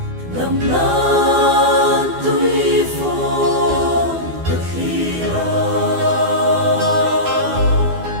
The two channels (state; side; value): late; left; 12 ms